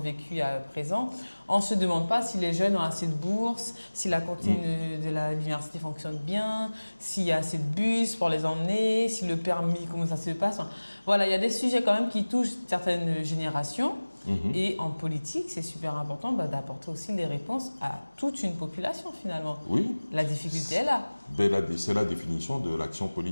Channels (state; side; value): inverted; both; correlation -1.00